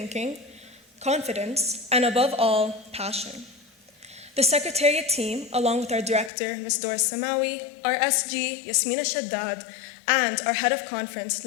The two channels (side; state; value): right; drops out; at 6.3 s